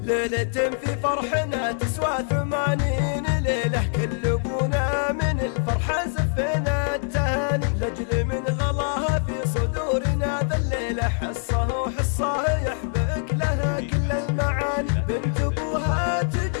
ليلة في فرحنا تسوى 80 ليلة، كل ابونا من الفرحة زفنا التهاني، لاجل من غلاها في صدورنا ذا الليلة، حصه حصه يحبك لها كل المعاني، بنت ابوها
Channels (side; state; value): right; silent; digital silence